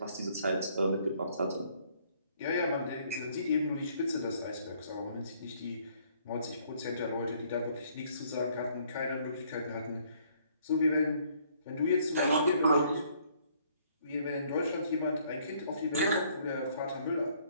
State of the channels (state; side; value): inverted; both; correlation -0.64